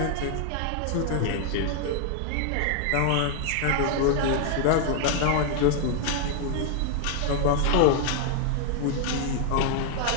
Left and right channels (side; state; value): both; different; correlation 0.00